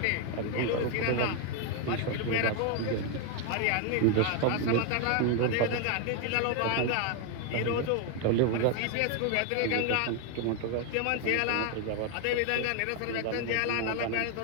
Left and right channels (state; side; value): different; both; correlation 0.01